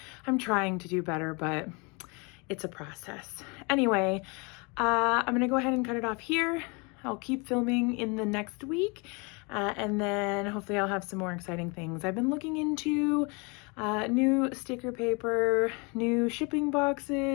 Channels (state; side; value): quieter; right; 30.6 dB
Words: I'm trying to do better, but it's a process. Anyway, I'm gonna go ahead and cut it off here. I'll keep filming in the next week, and then hopefully I'll have some more exciting things. I've been looking into new sticker paper, new shipping